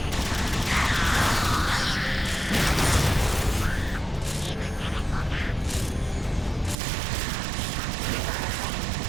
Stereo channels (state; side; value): drops out; left; at 6.8 s